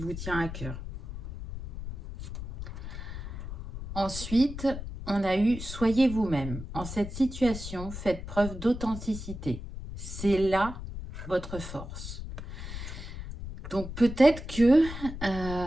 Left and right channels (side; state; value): left; noise; rumble, 9 dB below the sound